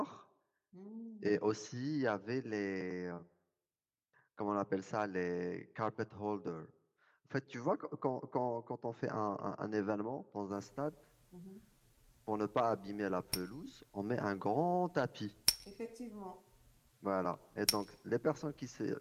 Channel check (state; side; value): identical; both; correlation 1.00